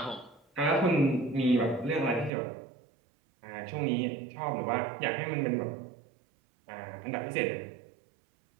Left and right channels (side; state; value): left; drops out; at 2.3 s